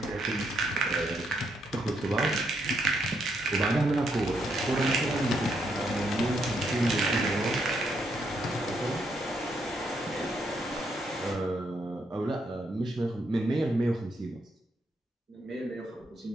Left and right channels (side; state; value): both; normal; correlation 0.76